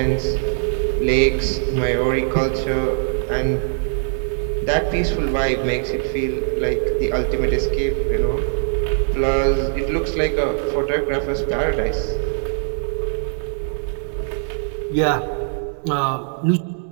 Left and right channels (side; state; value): left; silent; 65 dB below the other